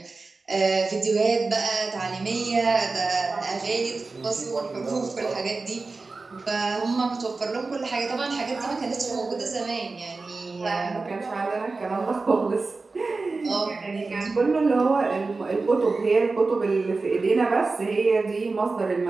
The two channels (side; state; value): left; quieter; 3.8 dB